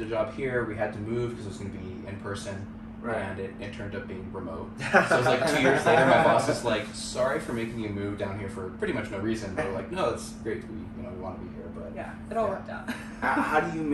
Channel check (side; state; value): both; identical; correlation 1.00